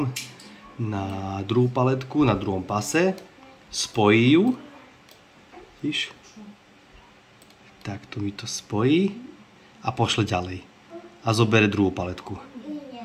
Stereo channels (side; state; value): both; identical; correlation 1.00